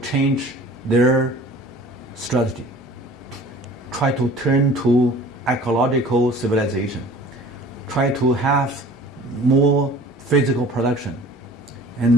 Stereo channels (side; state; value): both; normal; correlation 0.46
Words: their strategy, try to turn to ecological civilization, try to have more physical production,